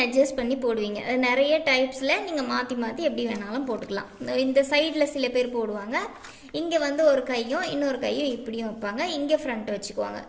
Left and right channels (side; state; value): both; identical; correlation 1.00